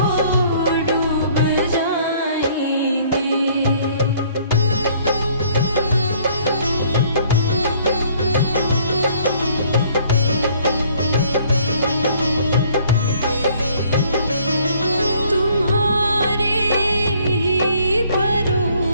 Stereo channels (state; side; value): inverted; both; correlation -0.60